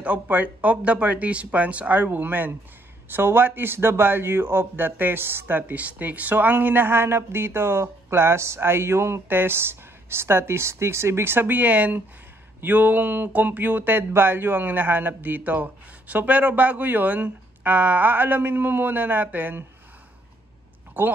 of the participants are women. So what is the value of the test statistics? So ang hinahanap dito, class, ay yung test statistics. Ibig sabihin, yung computed value ang hinahanap dito. So pero bago yun, aalamin mo muna natin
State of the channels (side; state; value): both; normal; correlation 0.69